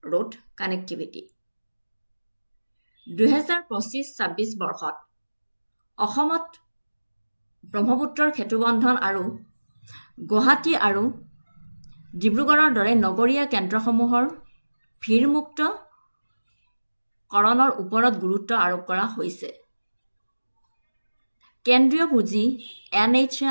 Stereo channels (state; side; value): inverted; both; correlation -1.00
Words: road connectivity. 2025-26 বৰ্ষত অসমত ব্ৰহ্মপুত্ৰৰ সেতুবন্ধন আৰু গুৱাহাটী আৰু ডিব্ৰুগড়ৰ দৰে নগৰীয়া কেন্দ্ৰসমূহৰ ভিৰমুক্ত কৰণৰ ওপৰত গুৰুত্ব আৰোপ কৰা হৈছে কেন্দ্ৰীয় পুঁজি